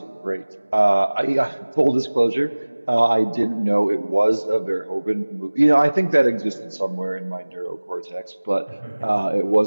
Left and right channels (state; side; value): inverted; both; correlation -1.00